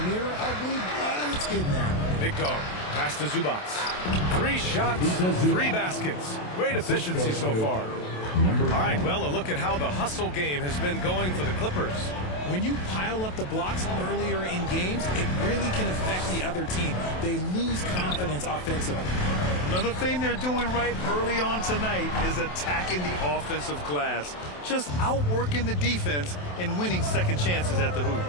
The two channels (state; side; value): late; right; 27 ms